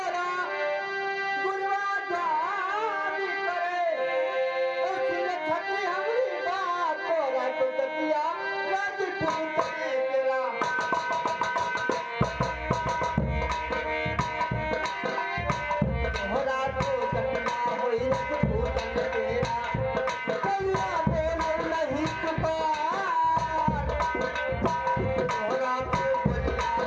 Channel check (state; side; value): identical; both; correlation 1.00